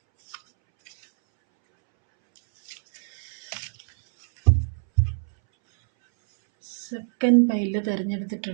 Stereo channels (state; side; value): silent; left; 62 dB below the other